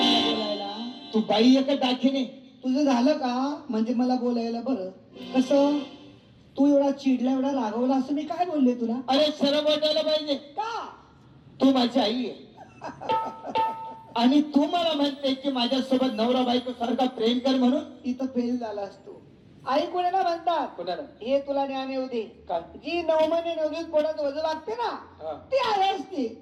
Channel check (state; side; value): identical; both; correlation 1.00